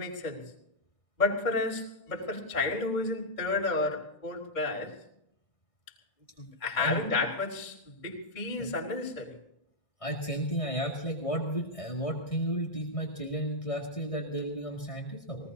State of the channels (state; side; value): late; right; 1.6 ms